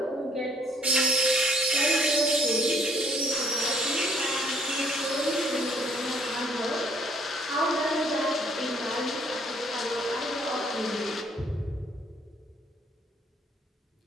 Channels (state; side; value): normal; both; correlation 0.63